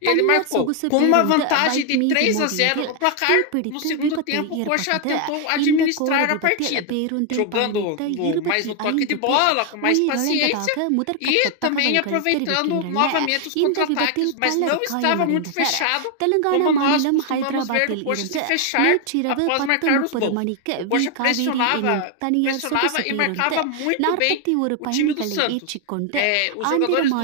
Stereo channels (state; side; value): different; both; correlation 0.01